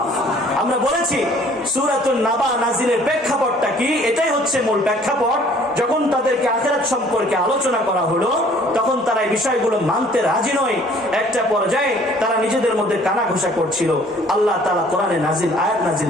আমরা বলেছি সূরাতুন নাবা নাযিলের প্রেক্ষাপটটা কি, এটাই হচ্ছে মূল প্রেক্ষাপট। যখন তাদেরকে আখিরাত সম্পর্কে আলোচনা করা হলো, তখন তারা এই বিষয়গুলো মানতে রাজি নয়। একটা পর্যায়ে তারা নিজেদের মধ্যে কানাঘুষা করছিল। আল্লাহ তাআলা কোরআনে আয়াত নাযিল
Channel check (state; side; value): normal; both; correlation 0.56